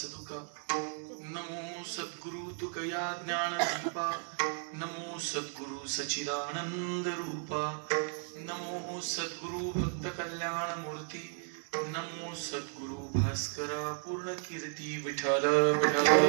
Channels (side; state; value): left; silent; 55 dB below the other